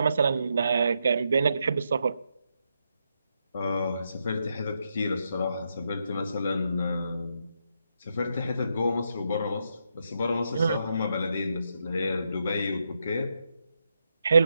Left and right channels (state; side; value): inverted; both; correlation -0.82